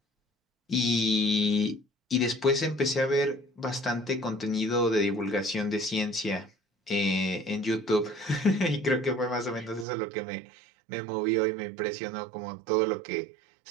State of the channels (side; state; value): left; drops out; at 9.9 s